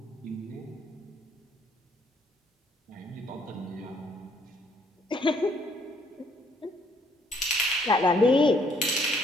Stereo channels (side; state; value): both; normal; correlation 0.66